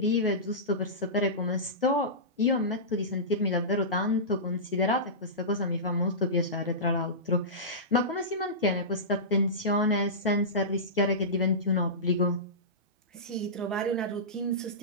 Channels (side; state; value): both; normal; correlation -0.19